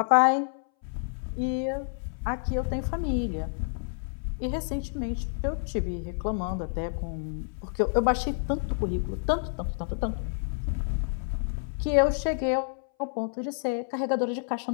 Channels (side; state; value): right; silent; 59 dB below the other